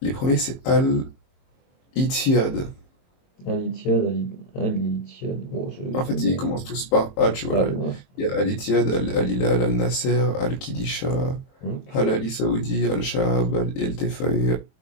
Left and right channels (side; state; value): right; late; 22 ms